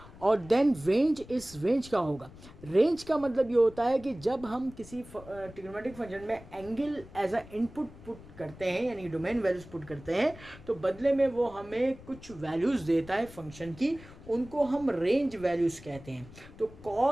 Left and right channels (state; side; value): noise; left; rumble, 19 dB below the sound